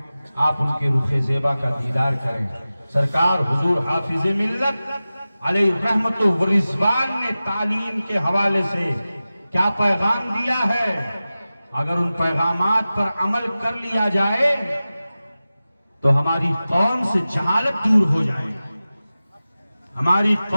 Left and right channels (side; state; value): both; inverted; correlation -0.96